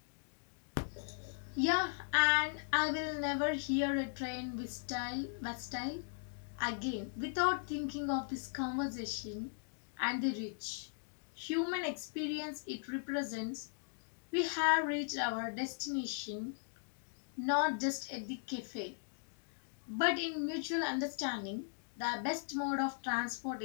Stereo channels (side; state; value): right; silent; digital silence